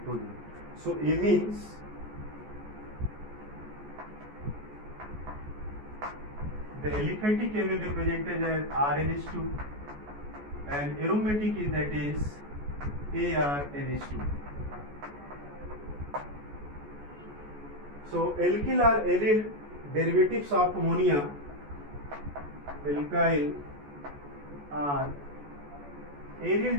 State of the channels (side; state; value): left; late; 14 ms